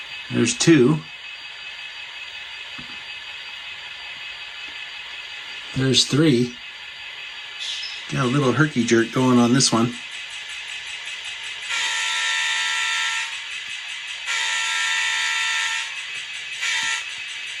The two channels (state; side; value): identical; both; correlation 1.00